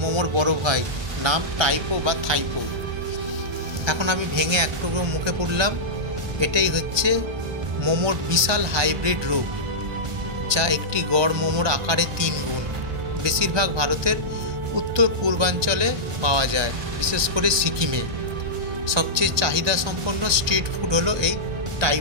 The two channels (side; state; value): left; late; 1.2 ms